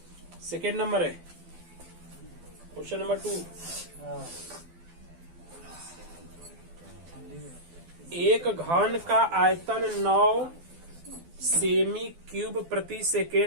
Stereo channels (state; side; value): late; left; 12 ms